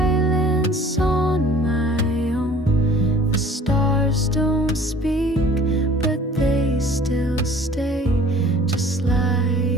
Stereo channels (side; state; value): both; normal; correlation 0.50